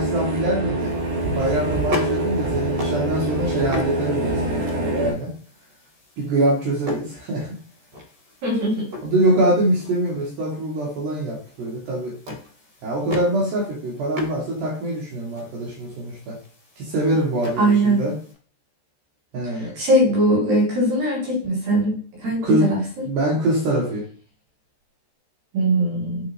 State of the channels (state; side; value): late; left; 14 ms